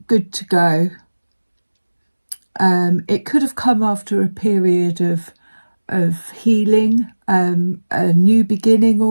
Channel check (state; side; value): inverted; both; correlation -1.00